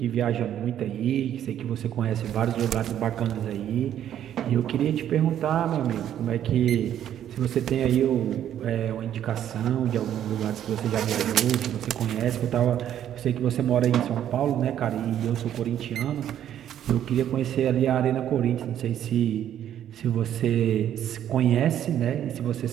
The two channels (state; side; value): quieter; left; 10.6 dB